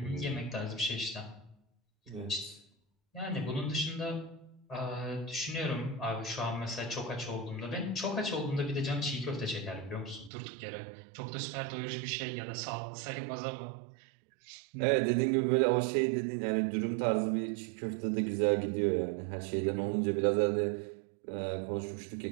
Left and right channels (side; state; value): left; drops out; at 10.3 s